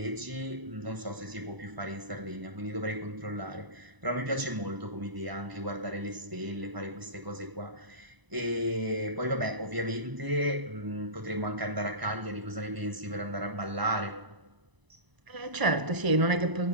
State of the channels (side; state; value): left; late; 1.0 ms